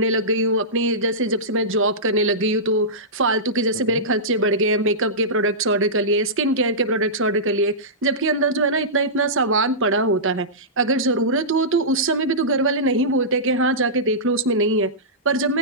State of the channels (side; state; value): both; normal; correlation -0.17